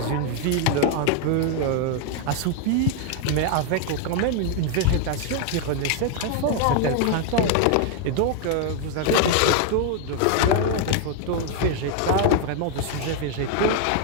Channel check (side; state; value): both; different; correlation 0.01